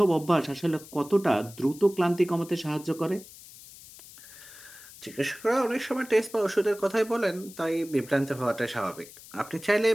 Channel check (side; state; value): left; noise; hiss, 19 dB below the sound